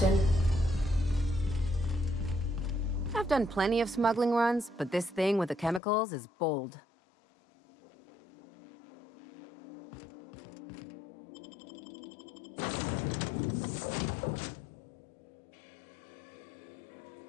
I've done plenty of smuggling runs, but this thing with the chemicals is bold.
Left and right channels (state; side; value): drops out; right; at 5.8 s